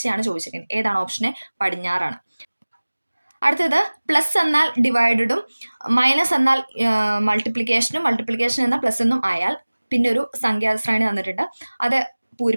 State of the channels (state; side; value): inverted; both; correlation -1.00